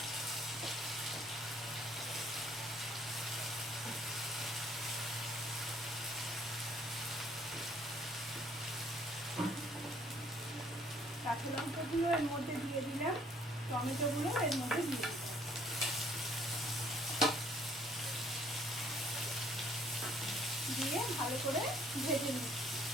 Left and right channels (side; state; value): both; normal; correlation 0.62